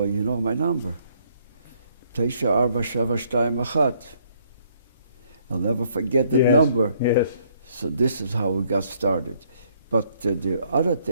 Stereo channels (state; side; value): inverted; both; correlation -0.67